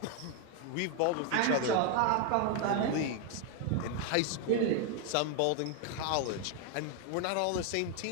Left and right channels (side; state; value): both; different; correlation 0.01